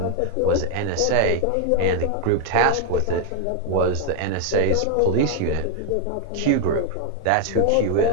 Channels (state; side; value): different; both; correlation 0.00